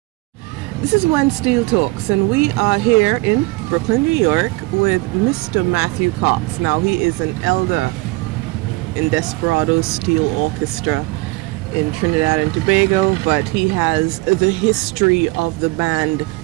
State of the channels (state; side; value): quieter; left; 23.0 dB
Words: This is When Steel Talks, and we are here in Brooklyn, New York with Mr. Matthew Cox. Now, he is an elder in Desperadoes Steel Orchestra in Trinidad and Tobago, but he has the history of the band